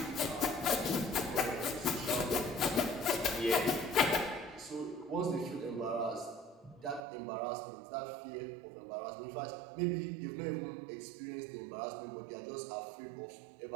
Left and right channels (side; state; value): left; drops out; at 7.0 s